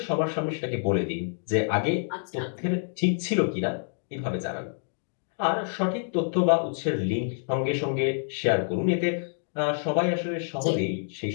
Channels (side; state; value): right; silent; digital silence